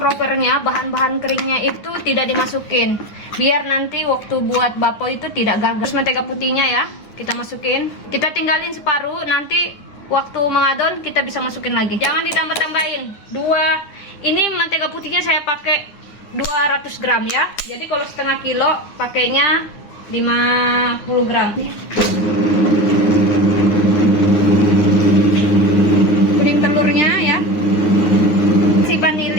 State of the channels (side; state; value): right; late; 9.5 ms